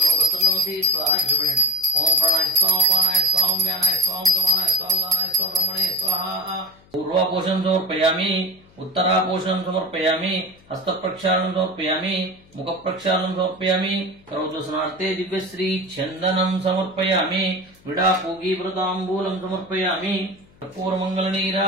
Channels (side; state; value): left; noise; hum, 28 dB below the sound